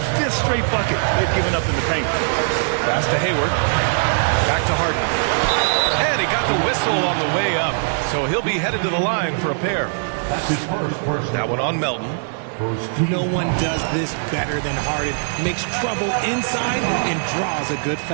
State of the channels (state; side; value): silent; left; 55 dB below the other